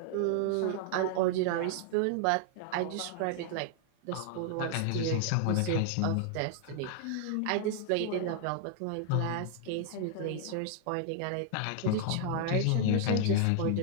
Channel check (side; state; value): both; different; correlation 0.00